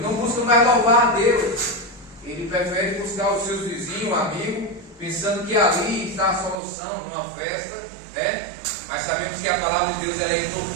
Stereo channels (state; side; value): drops out; left; at 6.6 s